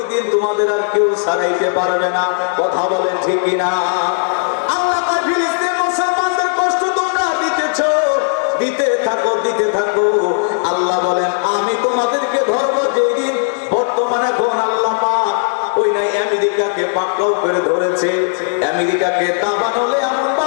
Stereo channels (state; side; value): silent; right; digital silence